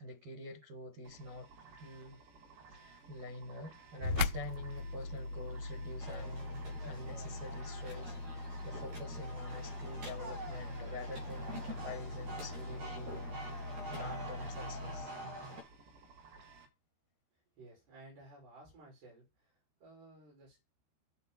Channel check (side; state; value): left; late; 12 ms